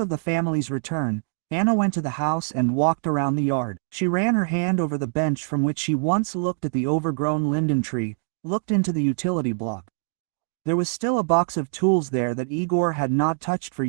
the family's return, Anna went to the house and walked around the yard. She ran her hand over the bench from which she once looked at the overgrown linden tree, looked into the utility block. There was still a box of tools there that Igor had not touched for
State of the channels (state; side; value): silent; left; digital silence